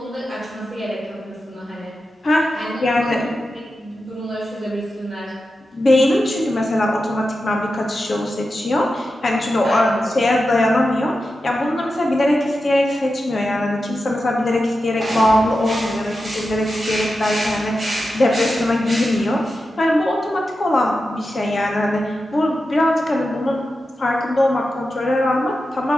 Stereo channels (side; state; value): both; normal; correlation 0.91